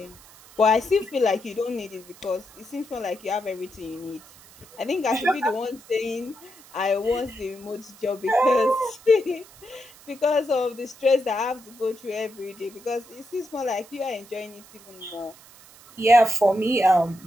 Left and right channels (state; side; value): noise; right; hiss, 23 dB below the sound